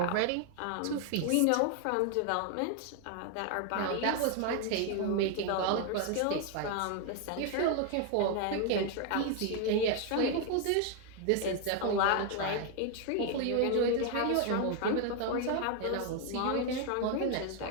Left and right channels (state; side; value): different; both; correlation 0.01